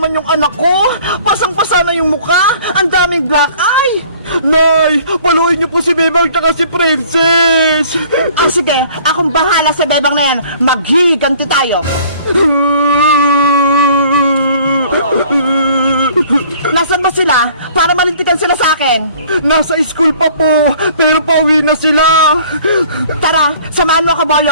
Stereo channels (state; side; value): inverted; both; correlation -0.53